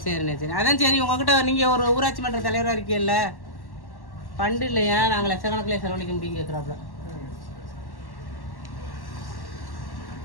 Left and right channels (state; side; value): late; right; 1.1 ms